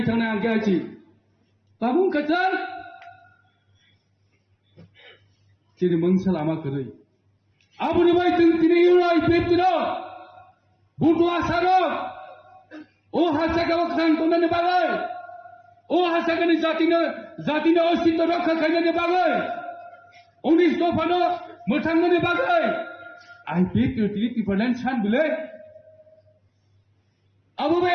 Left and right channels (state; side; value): identical; both; correlation 1.00